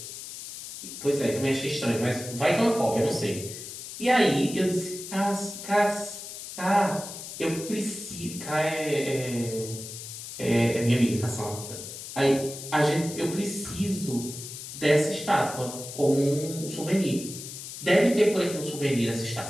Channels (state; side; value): noise; left; hiss, 10 dB below the sound